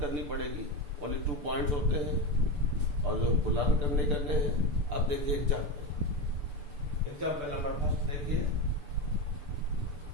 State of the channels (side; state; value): left; late; 6.9 ms